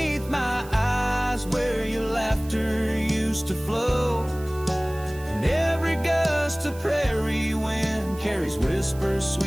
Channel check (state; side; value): noise; right; hiss, 20 dB below the sound